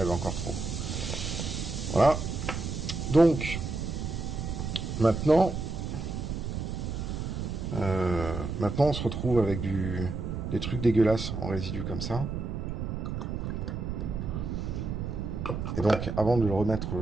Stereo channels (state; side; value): noise; right; rumble, 4 dB below the sound